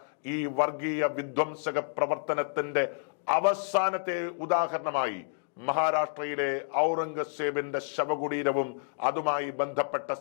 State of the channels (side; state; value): right; silent; digital silence